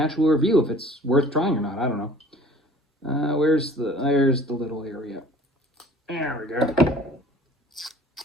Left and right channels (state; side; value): normal; both; correlation 0.48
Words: review if it's worth trying or not? I don't know. There's the little area. There we go.